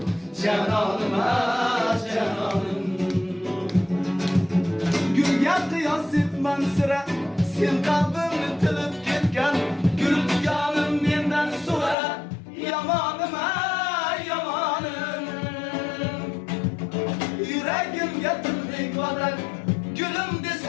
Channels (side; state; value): right; drops out; at 12.0 s